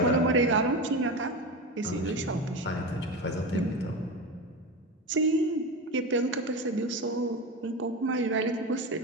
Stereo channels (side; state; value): both; normal; correlation 0.22